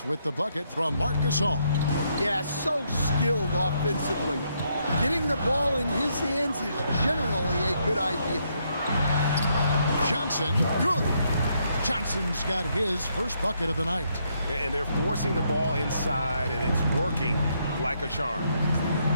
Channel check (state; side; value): inverted; both; correlation -0.75